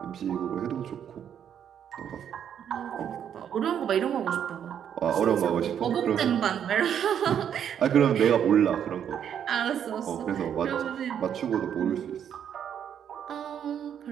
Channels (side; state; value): left; quieter; 8.9 dB